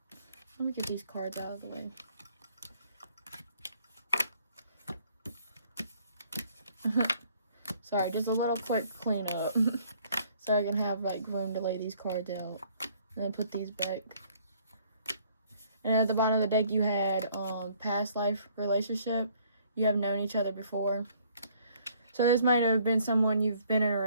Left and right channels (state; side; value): inverted; both; correlation -0.62